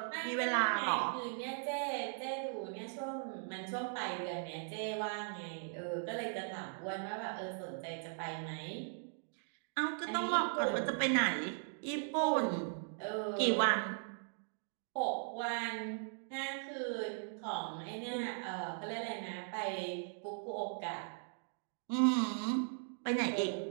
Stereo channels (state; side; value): silent; left; digital silence